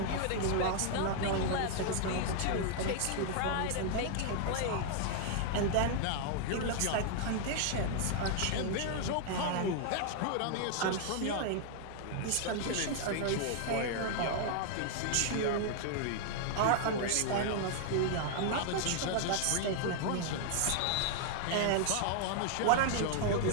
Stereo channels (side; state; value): both; different; correlation 0.00